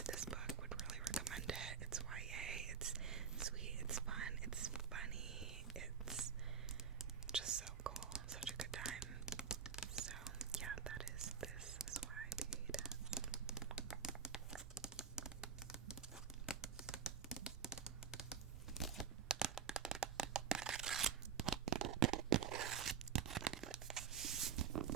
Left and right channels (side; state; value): left; quieter; 7.2 dB